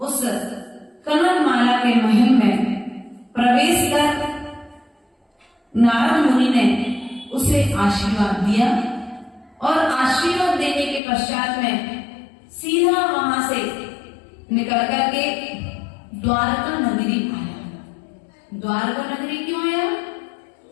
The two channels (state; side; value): drops out; right; at 11.0 s